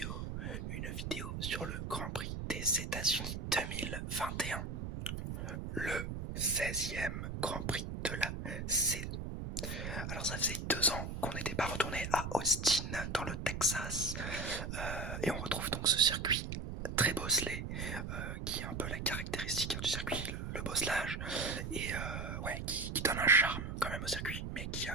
sur le Grand Prix des États-Unis 2021, le 16e Grand Prix de la saison. Alors ça faisait 2 ans qu'on n'était pas retourné à Austin dans le Texas et on retrouve donc ce circuit très bosselé qui est un peu la caractéristique du circuit, le bosselage, et qui donne un charme quand même au circuit, mais qui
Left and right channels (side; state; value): right; noise; rumble, 5 dB below the sound